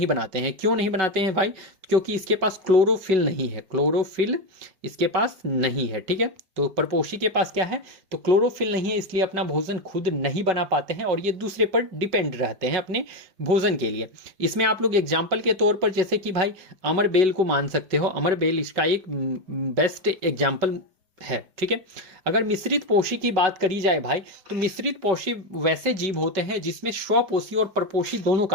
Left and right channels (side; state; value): left; late; 5.4 ms